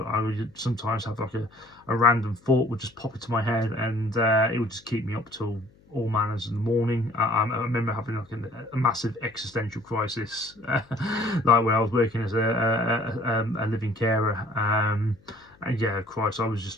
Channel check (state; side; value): noise; left; hum, 29 dB below the sound